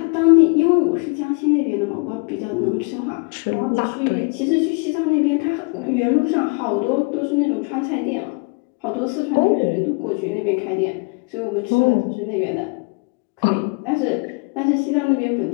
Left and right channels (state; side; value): quieter; right; 32.0 dB